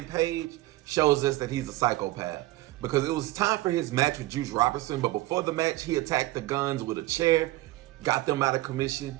Page shows us that he's a psychopath. Because it was time for his match with Juice Robinson. But before the match, he attacked the Guns with a chair. Got them out of commission.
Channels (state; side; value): quieter; left; 18.2 dB